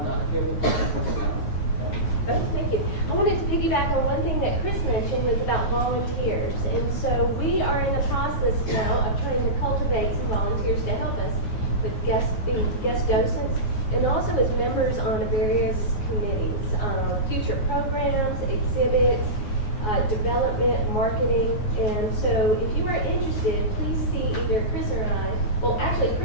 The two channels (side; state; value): right; late; 9.5 ms